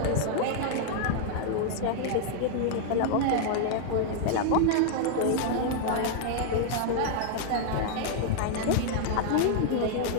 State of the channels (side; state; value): both; different; correlation -0.01